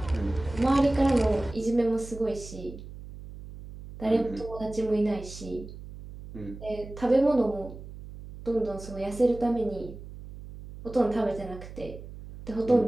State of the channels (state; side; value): noise; right; hum, 14 dB below the sound